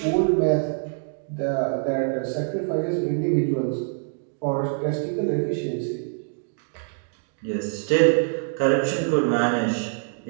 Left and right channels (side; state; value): left; silent; digital silence